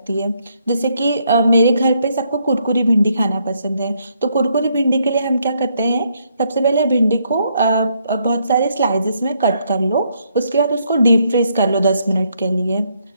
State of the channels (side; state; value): both; inverted; correlation -0.73